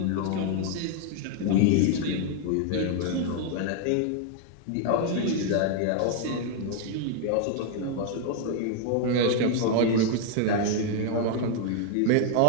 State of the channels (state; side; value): different; both; correlation 0.00